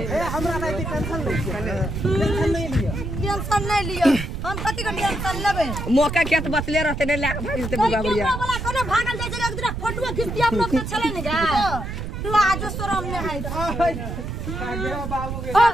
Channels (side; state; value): right; noise; rumble, 5 dB below the sound